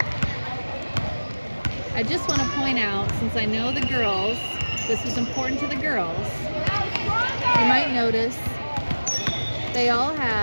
I just want to point out, since I know the girls, this is important to the girls, you might notice they all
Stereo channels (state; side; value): inverted; both; correlation -1.00